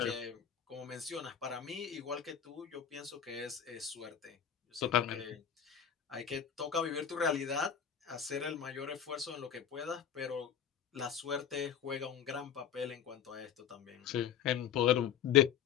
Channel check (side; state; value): right; quieter; 8.7 dB